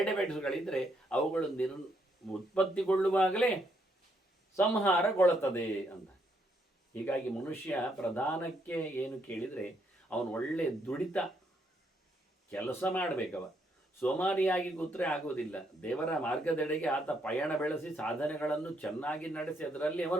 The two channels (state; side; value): normal; both; correlation 0.74